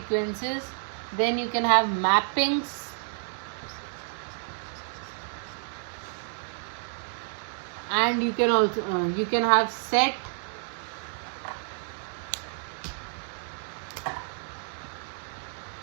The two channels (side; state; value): left; silent; 58 dB below the other